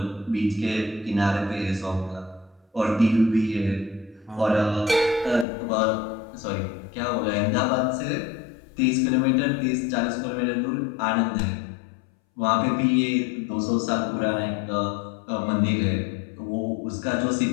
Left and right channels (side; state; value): right; drops out; at 5.5 s